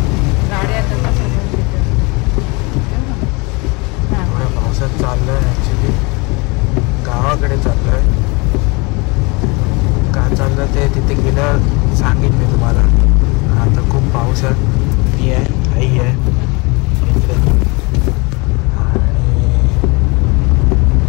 थोड्या पावसात चाललोय. ॲक्च्युली गावाकडे चाललोय. का चाललं ते तिथे गेल्यावर सांगेन मी तुम्हाला. आता खूप पाऊस आहे. मी आहे, आई आहे इकडे. आणि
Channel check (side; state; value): right; quieter; 27.8 dB